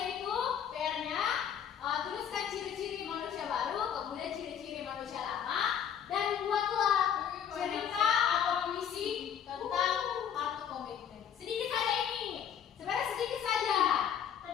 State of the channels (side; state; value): right; quieter; 8.7 dB